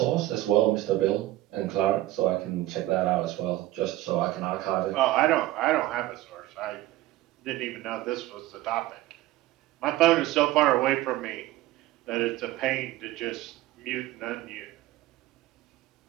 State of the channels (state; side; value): quieter; left; 16.2 dB